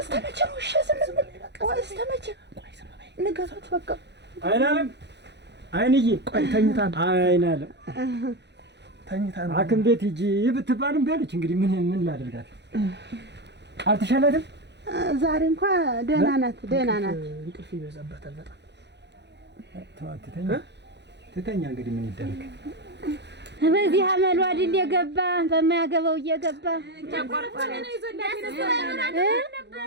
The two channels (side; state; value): left; late; 0.50 ms